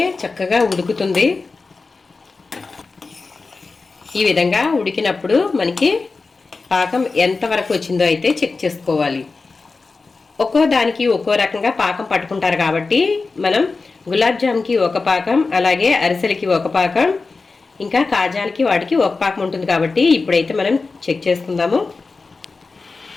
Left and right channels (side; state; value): right; quieter; 4.1 dB